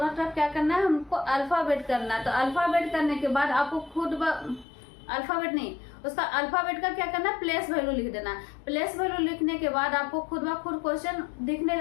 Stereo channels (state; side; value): drops out; right; at 4.7 s